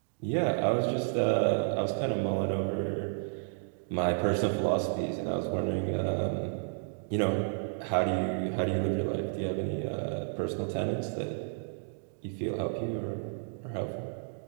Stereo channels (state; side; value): silent; left; digital silence